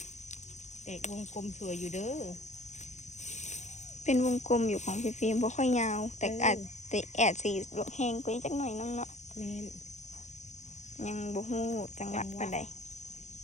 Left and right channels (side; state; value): right; late; 0.34 ms